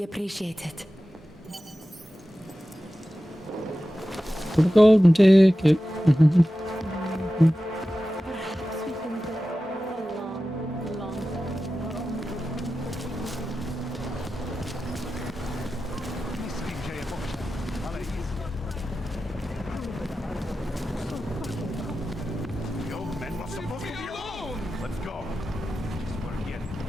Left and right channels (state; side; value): normal; both; correlation 0.94